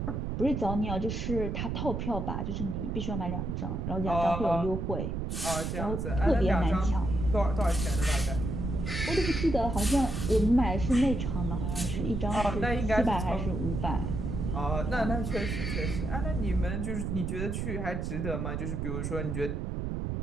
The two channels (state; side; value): noise; right; rumble, 3 dB below the sound